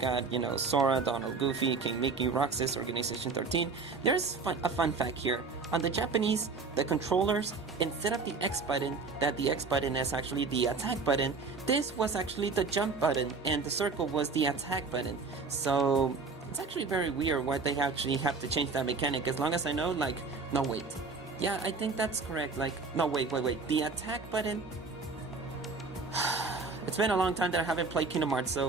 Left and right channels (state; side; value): quieter; left; 4.4 dB